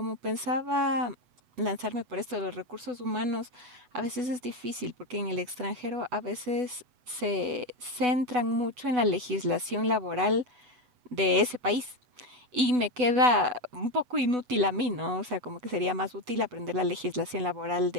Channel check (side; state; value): left; late; 8.0 ms